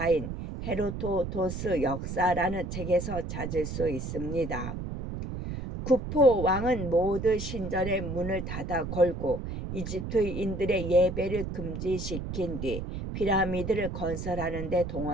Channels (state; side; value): noise; right; rumble, 6 dB below the sound